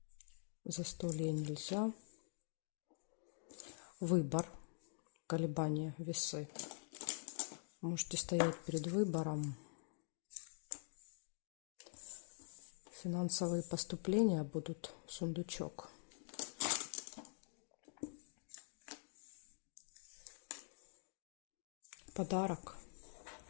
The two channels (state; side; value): silent; right; digital silence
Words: Застолье нельзя. Выбор, колебания, весы. Можете стоять перед выбором. Финансовые поступления будут, сундучок. Подарок.